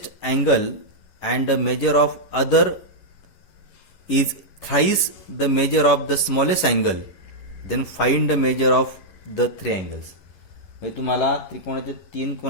angle, and the measure of other is thrice the measure of the smallest angle. Then find the measure of the three angles. म्हणजे तुम्हाला त्रिकोणाच्या तीन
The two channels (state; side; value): late; right; 11 ms